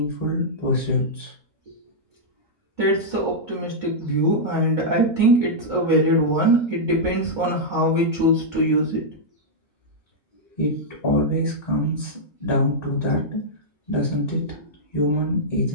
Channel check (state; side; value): normal; both; correlation -0.08